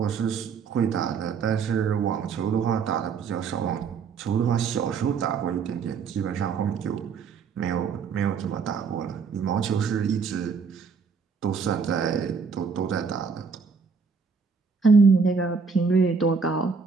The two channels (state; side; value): quieter; left; 5.4 dB